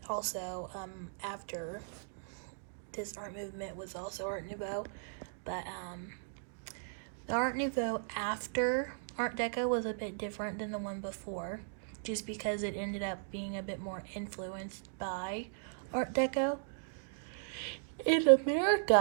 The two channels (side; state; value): left; silent; digital silence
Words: also after this art movement was also Art Nouveau, but the Art Nouveau after Art Deco was a bit different than the one before, just because it ended up being a bit more influenced by Art Deco. In